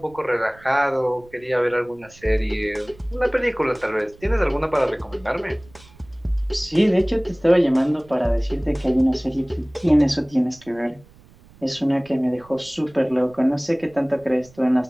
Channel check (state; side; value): noise; right; rumble, 25 dB below the sound